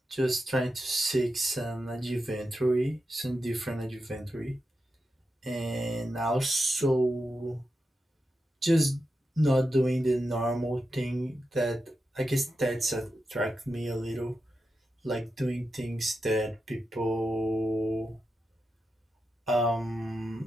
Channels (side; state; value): both; normal; correlation 0.89